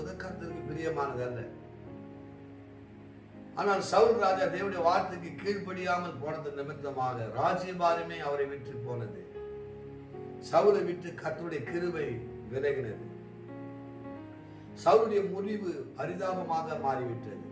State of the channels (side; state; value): both; identical; correlation 1.00